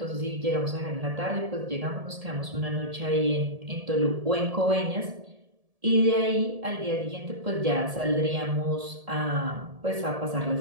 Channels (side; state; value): left; late; 1.7 ms